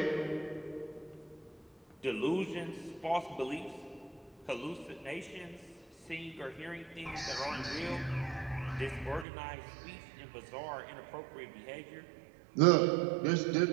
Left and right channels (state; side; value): drops out; left; at 9.2 s